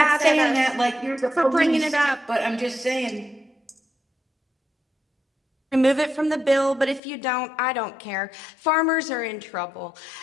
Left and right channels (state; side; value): drops out; right; at 7.0 s